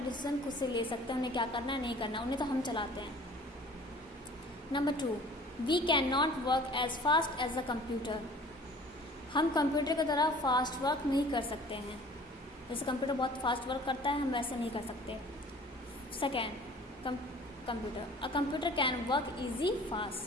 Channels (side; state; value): both; normal; correlation 0.48